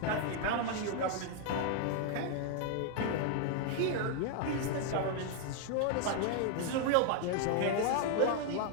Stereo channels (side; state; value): both; different; correlation 0.00